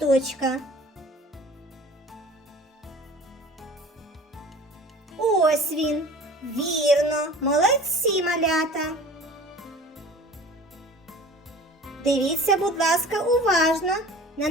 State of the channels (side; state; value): both; normal; correlation 0.44